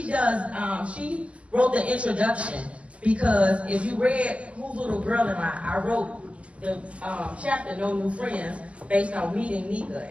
wrote the introduction, because if you read Whose Little Girl Am I wrote the chapter No New Friends based on meeting Nika,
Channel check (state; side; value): late; left; 0.062 ms